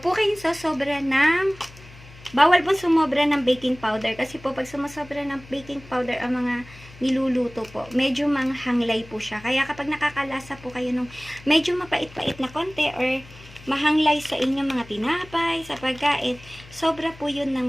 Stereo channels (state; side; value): noise; left; hum, 20 dB below the sound